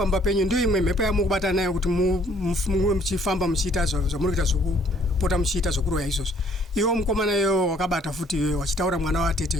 penyu ndio imwe mhepo yamukubatana nayo kuti muve muchifamba muchiita zvamuri kuita zvokupota muchiita zvokuroya izvozvo. Iwo mukomana iwo wakabata futi iwe wachitaura mwana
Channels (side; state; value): both; normal; correlation 0.61